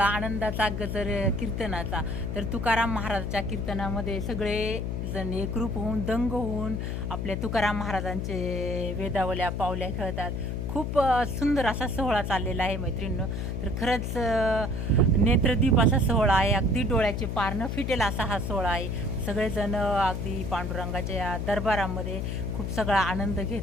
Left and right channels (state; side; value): noise; left; hum, 2 dB below the sound